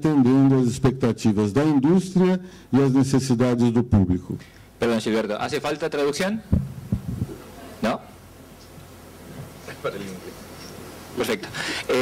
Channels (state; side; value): identical; both; correlation 1.00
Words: às expectativas da indústria e às necessidades do público. Perdón, Gilberto, ¿hace falta traducción? ¿No? Perfecto.